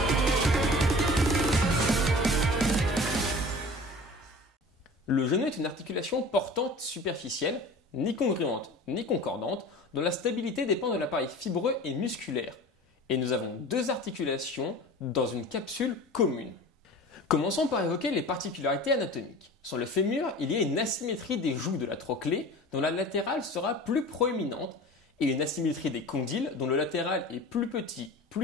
Le genou est une articulation portante superficielle, ni congruente ni concordante, dont la stabilité dépend de l'appareil fibreux et musculaire. Et nous avons 2 articulations dans une capsule commune. Commençons par évoquer les particularités anatomiques. Sur le fémur, il y a une asymétrie des joues de la trochlée, dont la latérale sera plus proéminente, et une asymétrie des condyles, dont le latéral est plus petit,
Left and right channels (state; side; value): normal; both; correlation 0.39